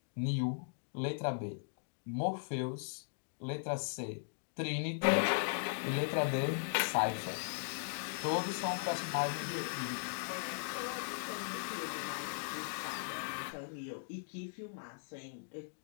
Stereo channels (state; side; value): silent; right; digital silence